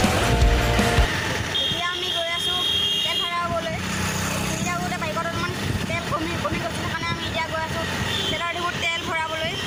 এতিয়া আমি গৈ আছোঁ তেল ভৰাবলৈ। এতিয়া গোটেই বাইকত অলপমান তেল কমি গৈছে, সেইকাৰণে আমি এতিয়া গৈ আছোঁ তেলৰ ডিপুত তেল ভৰাবলৈ।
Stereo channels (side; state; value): both; identical; correlation 1.00